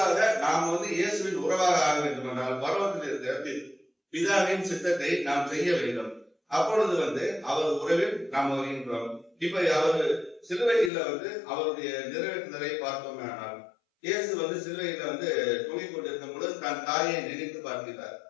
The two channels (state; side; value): drops out; right; at 10.9 s